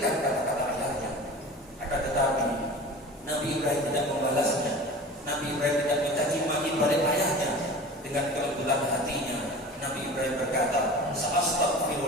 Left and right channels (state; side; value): normal; both; correlation 0.37